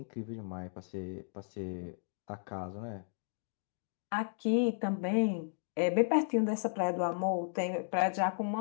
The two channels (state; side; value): silent; right; digital silence